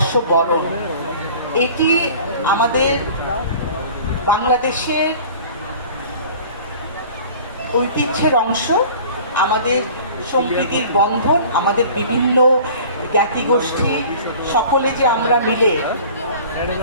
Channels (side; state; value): both; inverted; correlation -0.44